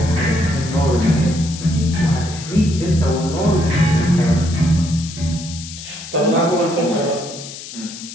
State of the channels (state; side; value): noise; left; hiss, 12 dB below the sound